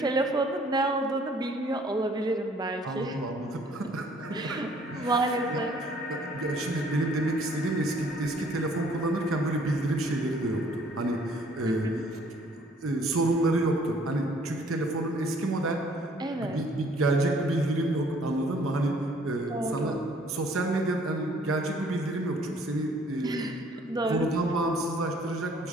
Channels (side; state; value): both; normal; correlation 0.59